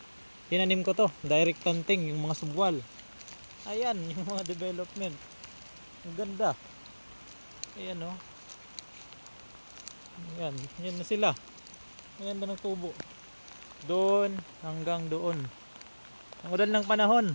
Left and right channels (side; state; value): both; inverted; correlation -1.00